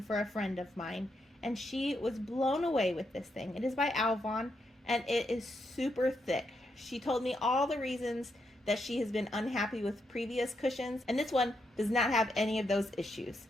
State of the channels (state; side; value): normal; both; correlation 0.81